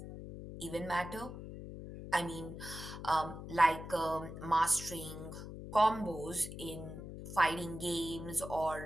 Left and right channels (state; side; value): noise; left; hum, 10 dB below the sound